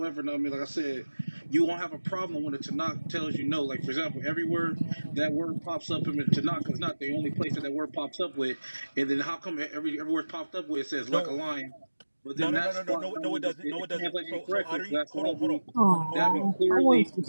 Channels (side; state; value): both; inverted; correlation -1.00